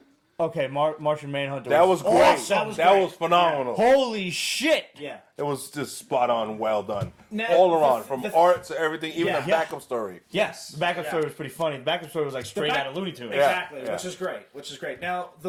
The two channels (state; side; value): identical; both; correlation 1.00